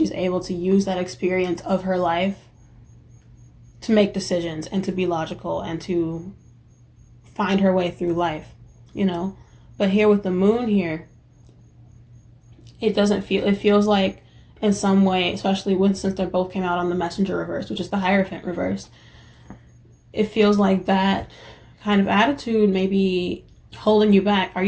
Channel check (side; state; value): both; identical; correlation 1.00